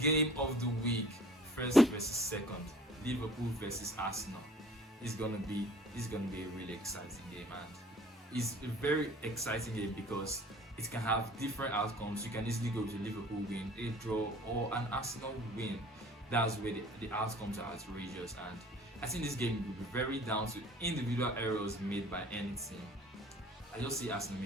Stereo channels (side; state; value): both; normal; correlation 0.49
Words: of the week, first versus second, Liverpool versus Arsenal. It's gonna be a really exciting game, and it's a very exciting game because it can have different outcomes. You can easily go to Liverpool win, a draw, or an Arsenal win. That's where the outcomes are outrageous, and I think this game will be very down to individual errors made by any team. I just see Arsenal